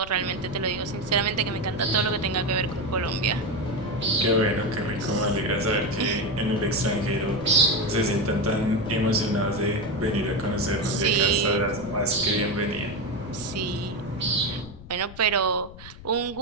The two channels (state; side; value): noise; left; rumble, 17 dB below the sound